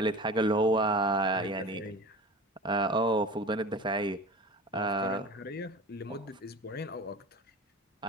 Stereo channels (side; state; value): both; normal; correlation 0.35